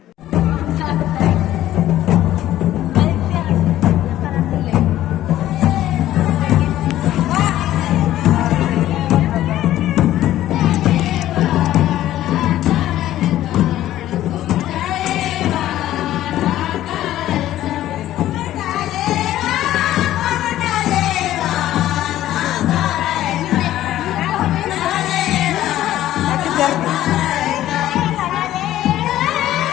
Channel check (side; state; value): right; quieter; 13.5 dB